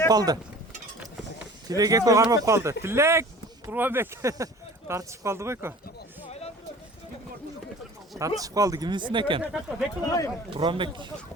kaldı. Tilek eko karmap kaldı. Tilek! Kurban bek. Tartışıp kaldı beko. Tartışıp kaldı. Kiminsin eken? Kurban bek.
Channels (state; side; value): normal; both; correlation 0.44